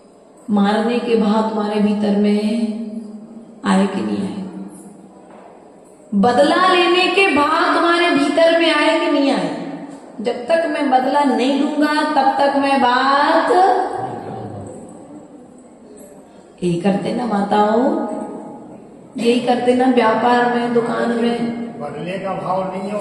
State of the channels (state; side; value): identical; both; correlation 1.00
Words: मारने के भाव तुम्हारे भीतर में है, आए कि नहीं आए? बदला लेने के भाव तुम्हारे भीतर में आए कि नहीं आए? जब तक मैं बदला नहीं लूंगा तब तक मैं बात यही करते ना माताओं, यही करते ना व्यापार में, दुकान में। बदले का भाव नहीं है